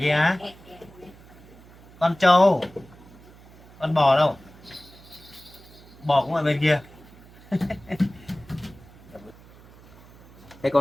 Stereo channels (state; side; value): noise; right; hum, 23 dB below the sound